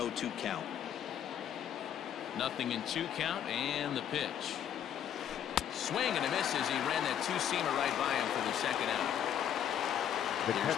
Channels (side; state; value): right; quieter; 9.7 dB